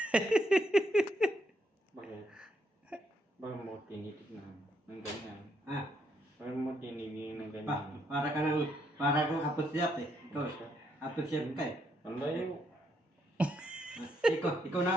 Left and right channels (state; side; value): normal; both; correlation 0.75